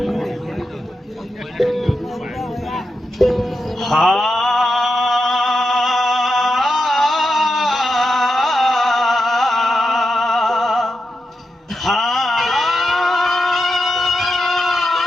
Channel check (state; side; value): normal; both; correlation 0.87